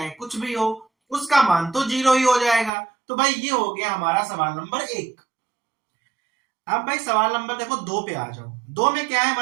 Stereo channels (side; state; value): left; drops out; at 2.7 s